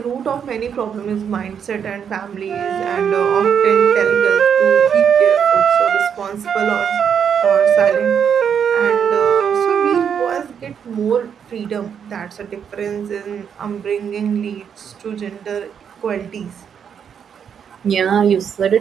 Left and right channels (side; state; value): left; quieter; 7.7 dB